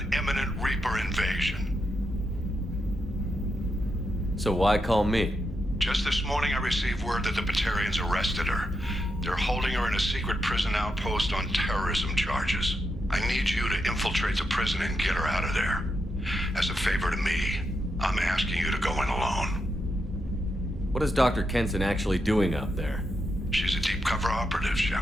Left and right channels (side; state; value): both; normal; correlation 0.84